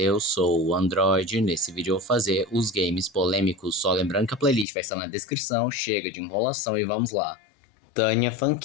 sou o Android. Nesse vídeo eu vou fazer os games polêmicos, só lembrando que a playlist vai estar na descrição. Chega de enrolação e vamos lá. Tânia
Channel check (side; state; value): right; drops out; at 4.7 s